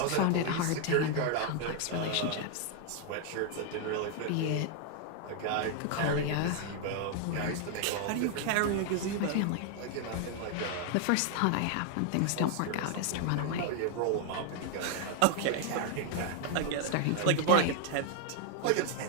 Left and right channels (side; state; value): both; different; correlation 0.00